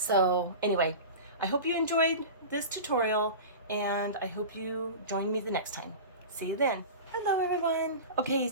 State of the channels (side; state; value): both; inverted; correlation -0.31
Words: anyway, I hope you enjoyed this tutorial, and I hope you join me the next time. See you then. Hello everyone. Okay,